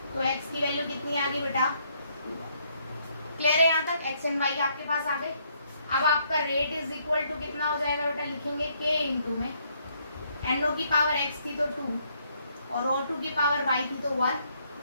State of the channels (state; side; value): inverted; both; correlation -0.70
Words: तो x की वैल्यू कितनी आ गई बेटा? क्लियर है यहाँ तक? x एंड y आपके पास आ गए। अब आपका रेट इज इक्वल टू कितना हो जाएगा बेटा? लिखेंगे k इंटू में NO की पावर x थी तो 2 और O2 की पावर y थी तो 1,